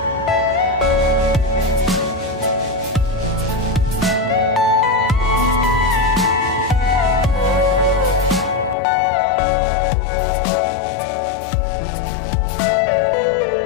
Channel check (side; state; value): right; drops out; at 8.8 s